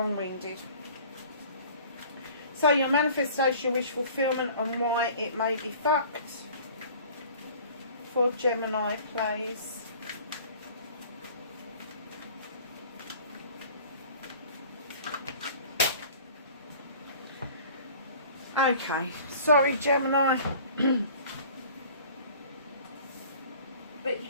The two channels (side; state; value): both; inverted; correlation -0.47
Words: So your manifestation, your wish fulfillment, and why it may be fucked for Gemini, please. Okay, sorry Gemini, but